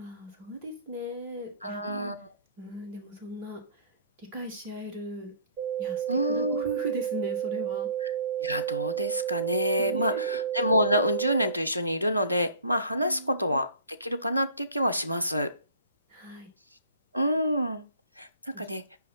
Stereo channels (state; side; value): inverted; both; correlation -0.51